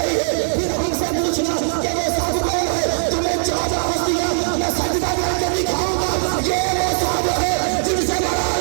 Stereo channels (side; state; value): left; silent; 66 dB below the other